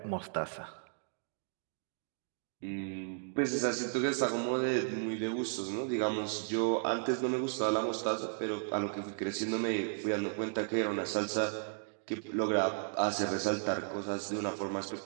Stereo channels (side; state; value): left; silent; digital silence